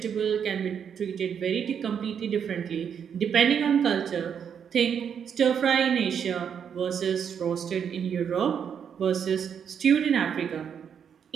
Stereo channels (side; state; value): left; quieter; 7.7 dB